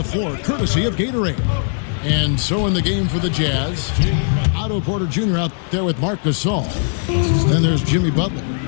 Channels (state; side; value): silent; right; 67 dB below the other